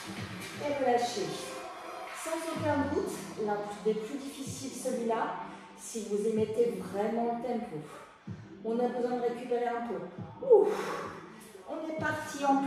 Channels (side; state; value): both; identical; correlation 1.00